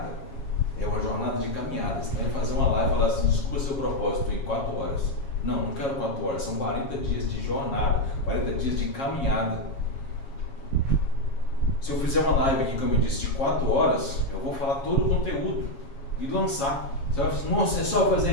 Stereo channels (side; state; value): right; late; 7.3 ms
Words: É uma jornada de caminhada. Você vai fazer uma live e falar assim, desculpa seu propósito em 4 horas. Não quero 4 horas, são 40 dias de jornada, 40 dias de caminhada. Se eu fizer uma live aqui, como eu disse, de 4 horas, eu vou falar todo o conteúdo e lançar. Você vai falar, nossa, é só fazer